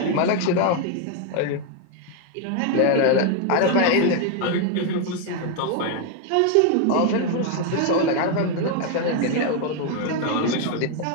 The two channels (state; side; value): different; both; correlation 0.01